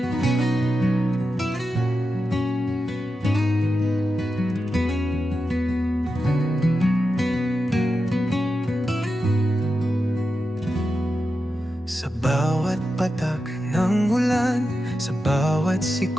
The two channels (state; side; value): normal; both; correlation 0.90